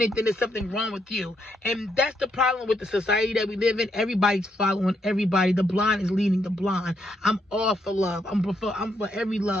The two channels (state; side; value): normal; both; correlation 0.77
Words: it, then there's something wrong with you. And that's the problem with the society that we live in. Everybody's following everybody. The blind is leading the blind. I'm all for love. I'm for every